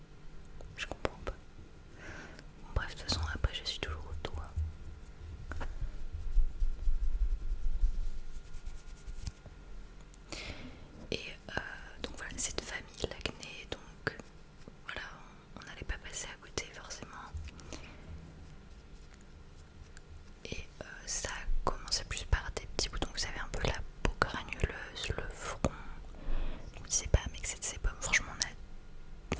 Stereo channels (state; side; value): identical; both; correlation 1.00